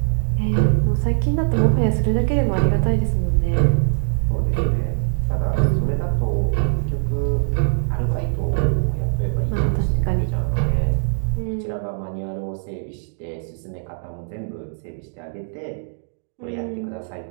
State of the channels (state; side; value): silent; left; digital silence